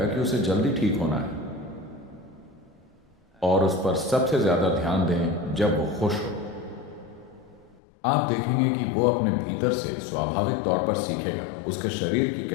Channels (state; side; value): drops out; right; at 7.8 s